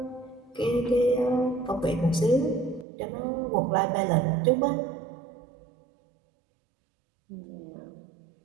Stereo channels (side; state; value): left; drops out; at 2.9 s